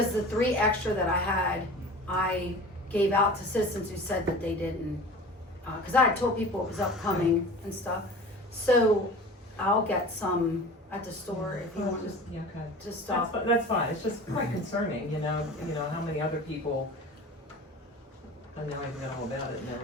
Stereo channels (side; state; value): both; normal; correlation 0.38